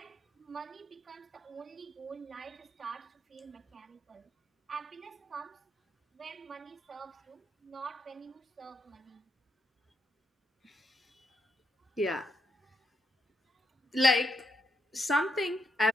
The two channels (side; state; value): both; normal; correlation 0.77